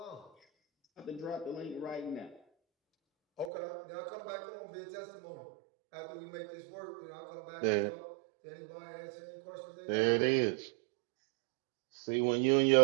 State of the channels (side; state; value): left; drops out; at 3.5 s